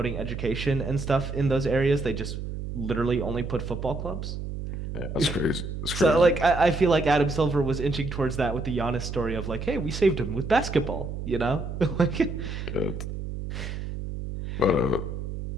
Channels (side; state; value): right; noise; hum, 6 dB below the sound